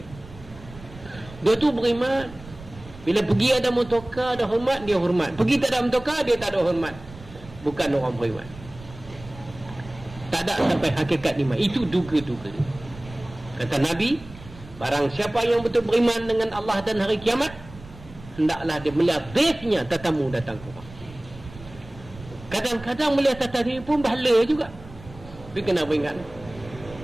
dia tu beriman. Bila pergi ada motorkar, ada hormat, dia hormat. Pergi tak ada motorkar, dia tak ada hormat. Bukan orang beriman. Tak ada sampai hakikat iman. Itu duga-duga. Kata Nabi, barang siapa yang betul beriman dengan Allah dan hari kiamat, hendaklah dia melihat dhaifnya, tetamu datang ke rumah. Kadang-kadang melihat tetamu pun bahala juga. Tapi kena beringat.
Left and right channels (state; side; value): noise; right; rumble, 18 dB below the sound